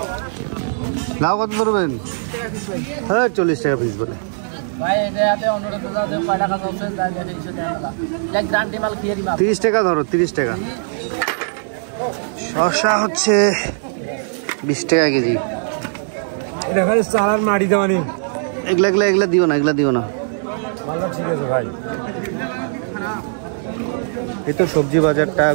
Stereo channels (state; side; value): silent; left; 66 dB below the other